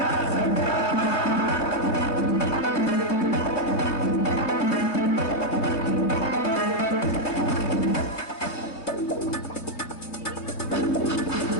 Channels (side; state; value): right; late; 3.1 ms